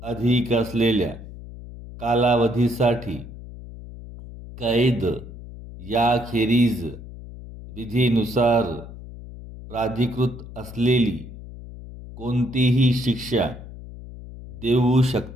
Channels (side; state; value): left; noise; hum, 14 dB below the sound